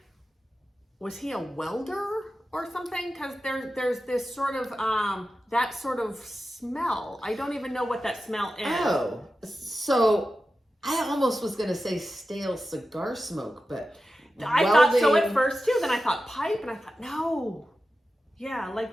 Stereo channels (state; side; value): normal; both; correlation 0.92